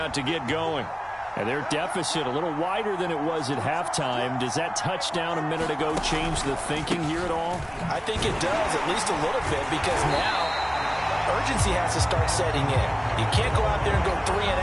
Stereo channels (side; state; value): both; identical; correlation 1.00